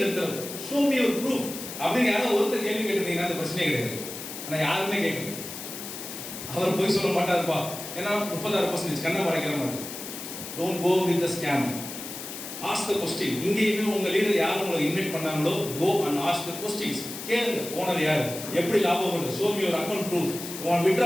எடுத்துறது, ஷோ மீ யுவர் ப்ரூஃப் அப்படின்னு யாரோ ஒருத்தர் கேள்வி கேட்டிருந்தீங்கன்னா அந்த பிரச்சனையே கிடையாது. ஆனால் யாருமே கேட்கல. அவர் போய் சொல்ல மாட்டாருப்பா ஏன்னா 36% கண்ணை மறைக்கிற மாதிரி. Don't go with the scam. Ask the question. இங்கேயுமே உங்க லீடர் யார் உங்களை இன்வைட் பண்ணாங்களோ go and ask the questions. கேளுங்க ஓனர் யார், எப்படி லாபம் வருது, show me your account proof, உங்க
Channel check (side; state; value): left; noise; hiss, 9 dB below the sound